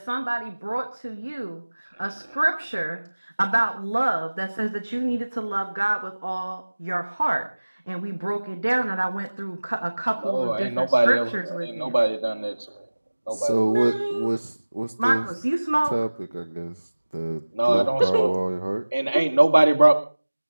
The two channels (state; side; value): inverted; both; correlation -1.00